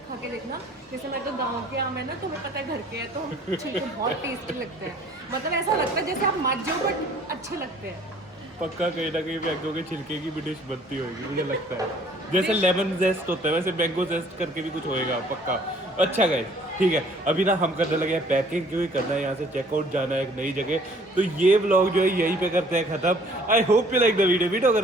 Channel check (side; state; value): both; normal; correlation 0.56